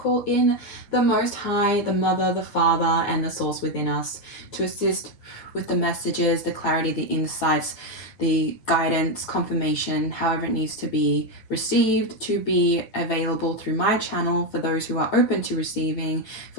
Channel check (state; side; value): late; right; 9.2 ms